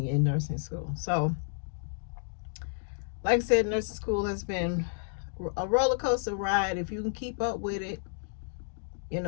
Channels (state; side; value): silent; right; digital silence